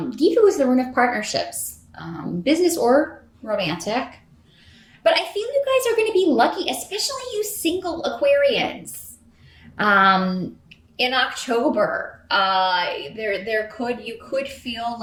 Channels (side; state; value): both; identical; correlation 1.00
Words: is the rune of partnerships, business or romantic. But I feel you guys are going to be lucky, especially you single Aquarians. In October, you could feel